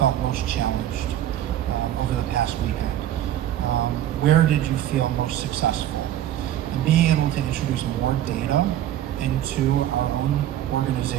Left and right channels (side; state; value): left; quieter; 11.9 dB